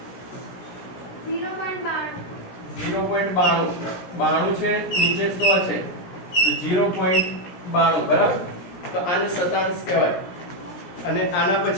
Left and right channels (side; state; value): right; late; 17 ms